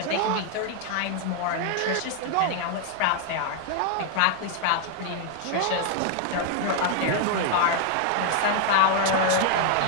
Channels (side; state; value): both; different; correlation 0.00